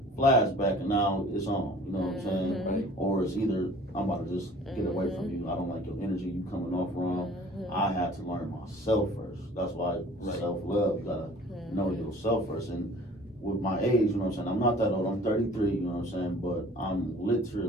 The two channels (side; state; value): both; normal; correlation 0.49